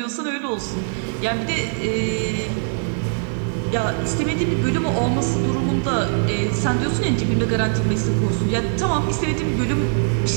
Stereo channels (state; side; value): silent; left; 61 dB below the other